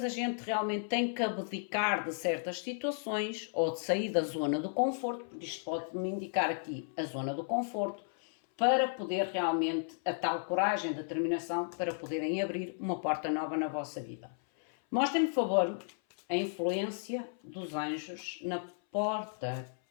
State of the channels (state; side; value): silent; right; 55 dB below the other